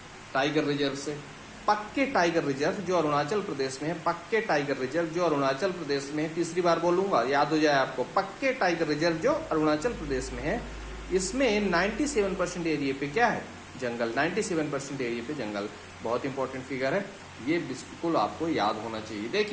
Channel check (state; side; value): identical; both; correlation 1.00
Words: टाइगर रिजर्व से। पक्के टाइगर रिजर्व जो अरुणाचल प्रदेश में है, पक्के टाइगर रिजर्व जो अरुणाचल प्रदेश में है, तीसरी बार बोलूंगा याद हो जाए आपको, पक्के टाइगर रिजर्व जो अरुणाचल प्रदेश में है, इसमें 97% एरिया पे क्या है? जंगल। 97% एरिया पे जंगल। बहुत इंपॉर्टेंट फिगर है, ये बिल्कुल आपको याद होना चाहिए।